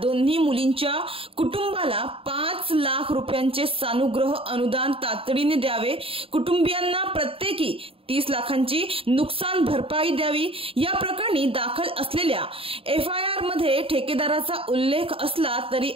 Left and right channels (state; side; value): late; left; 0.27 ms